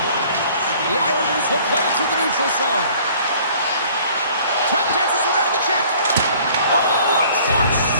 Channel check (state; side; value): inverted; both; correlation -0.54